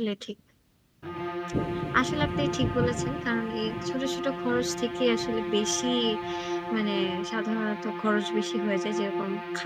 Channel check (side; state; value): both; identical; correlation 1.00